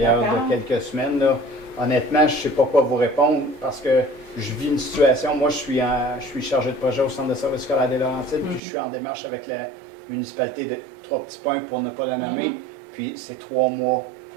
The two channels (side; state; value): left; drops out; at 8.6 s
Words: D'accord. de quelques semaines. Là. Honnêtement, je ne sais pas quoi vous répondre parce que je vis une situation. Moi, je suis chargé de projet au Centre de services scolaires des Laurentides, puis je suis en démarche avec la municipalité de Trois-Petits-Points pour ne pas la nommer. Puis c'est 3 mois